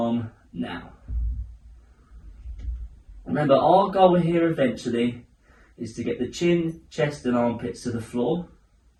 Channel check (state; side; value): identical; both; correlation 1.00